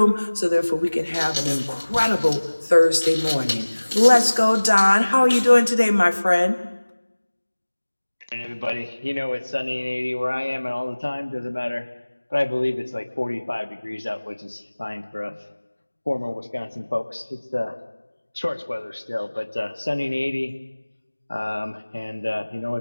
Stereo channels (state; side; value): inverted; both; correlation -1.00